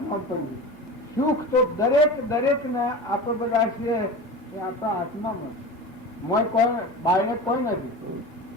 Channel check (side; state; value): both; normal; correlation 0.31